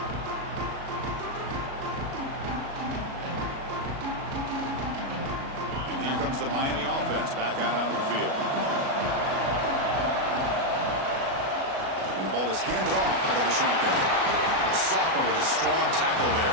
The Miami offense back out onto the field. And the ball is handed off out of the shotgun. The sophomore with a strong tackle there.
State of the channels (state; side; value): late; left; 37 ms